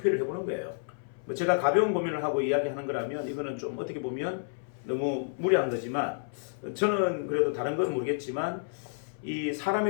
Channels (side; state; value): right; silent; 58 dB below the other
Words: 해보는 거예요. 뭐 제가 가벼운 고민을 하고 이야기하는 거라면 이거는 좀 어떻게 보면 너무 무리한 거지만 저는 그래도 다른 건 모르겠지만 이 사람에